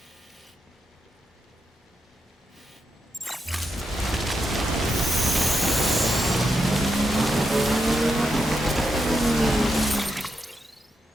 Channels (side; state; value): both; normal; correlation 0.84